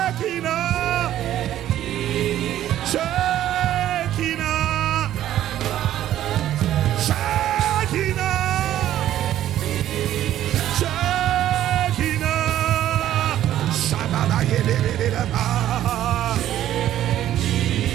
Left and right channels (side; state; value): left; quieter; 12.4 dB